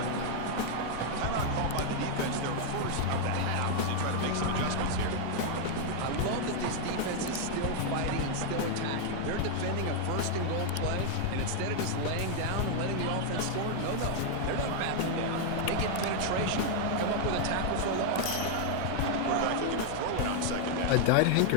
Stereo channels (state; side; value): different; both; correlation 0.00